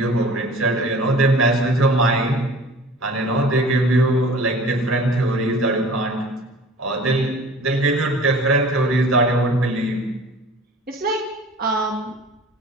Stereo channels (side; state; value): both; normal; correlation 0.45